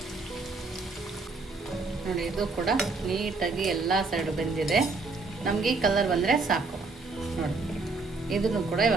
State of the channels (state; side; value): quieter; left; 3.8 dB